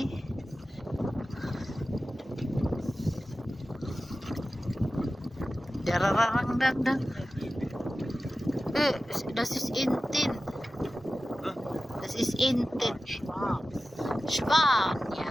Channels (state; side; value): normal; both; correlation 0.94